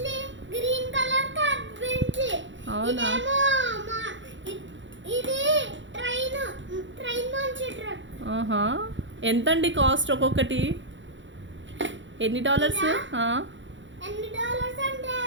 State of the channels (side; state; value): left; late; 0.54 ms